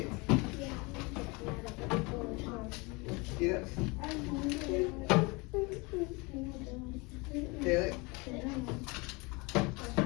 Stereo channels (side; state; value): right; quieter; 27.2 dB